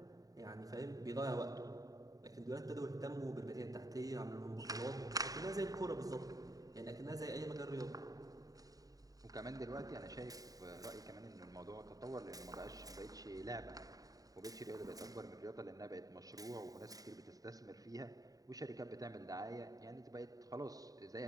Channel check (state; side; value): late; left; 0.18 ms